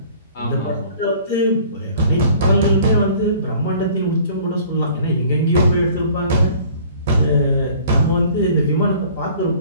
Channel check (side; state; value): both; inverted; correlation -0.51